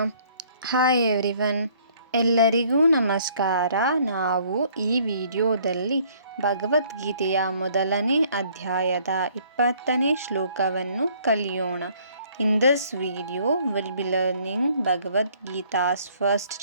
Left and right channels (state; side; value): inverted; both; correlation -0.61